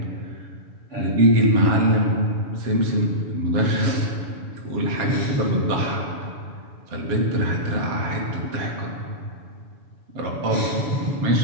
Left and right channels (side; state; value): left; late; 7.1 ms